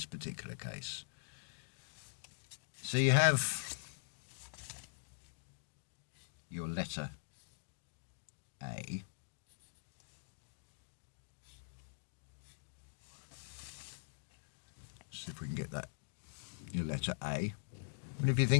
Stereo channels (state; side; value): silent; right; digital silence